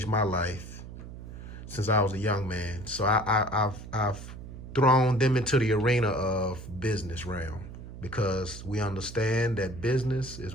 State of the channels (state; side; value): noise; right; hum, 12 dB below the sound